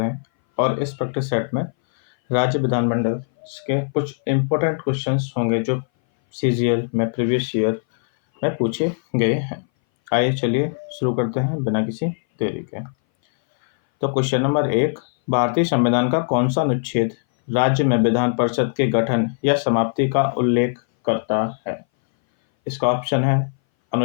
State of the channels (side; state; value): right; silent; 60 dB below the other